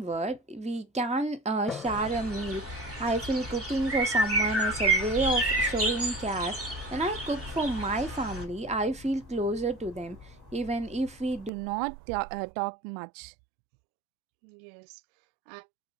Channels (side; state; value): left; drops out; at 11.5 s